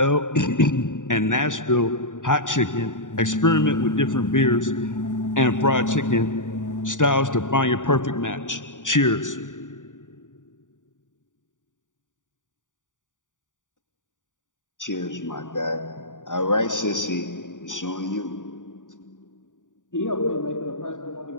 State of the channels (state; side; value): late; right; 0.87 ms